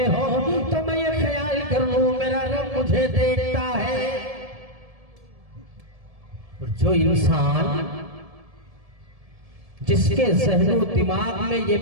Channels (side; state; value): left; late; 1.7 ms